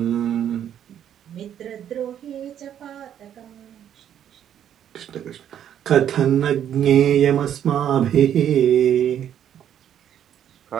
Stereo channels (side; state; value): left; quieter; 9.9 dB